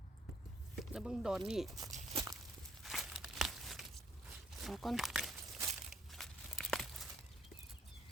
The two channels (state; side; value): normal; both; correlation 0.66